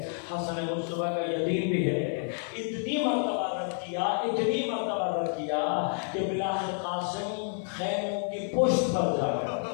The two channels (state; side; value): silent; right; 58 dB below the other